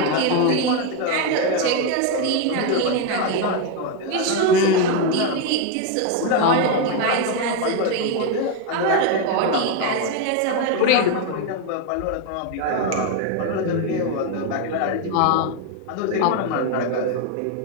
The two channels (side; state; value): both; different; correlation 0.02